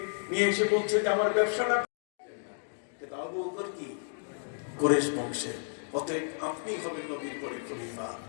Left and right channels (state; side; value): silent; right; digital silence